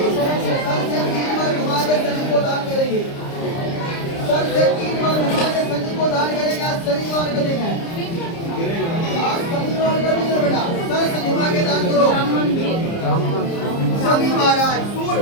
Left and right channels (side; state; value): right; late; 30 ms